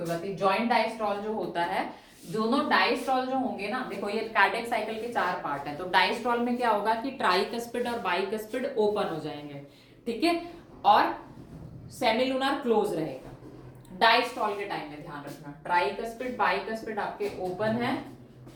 बात नहीं। जॉइंट डायस्ट्रॉल जो होता है, दोनों डायस्ट्रॉल जो होंगे ना, देखो ये कार्डियक साइकिल के 4 पार्ट है, तो डायस्ट्रॉल में क्या होगा कि ट्राइकस्पिड और बाइकस्पिड ओपन हो जाएंगे, ठीक है, और सेमिलुनार क्लोज रहेगा। डायस्ट्रॉल के टाइम में ध्यान रखना, ट्राइकस्पिड बाइकस्पिड आपके ओपन है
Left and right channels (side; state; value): both; identical; correlation 1.00